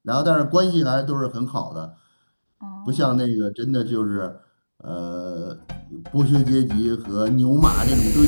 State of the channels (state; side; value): inverted; both; correlation -1.00